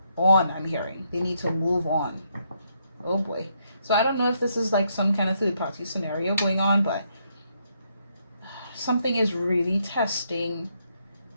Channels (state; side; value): inverted; both; correlation -0.76